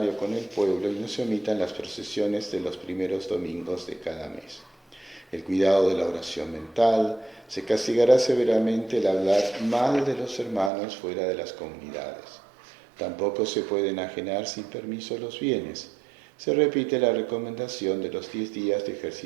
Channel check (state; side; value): drops out; left; at 10.7 s